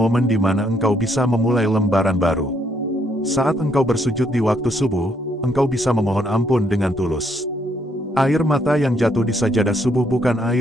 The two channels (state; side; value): normal; both; correlation 0.71